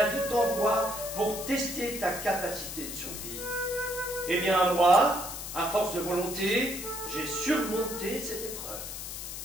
vie t'envoie pour tester ta capacité de survie. Eh bien, moi, à force de volonté, j'ai surmonté cette épreuve.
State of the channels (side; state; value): left; noise; hiss, 8 dB below the sound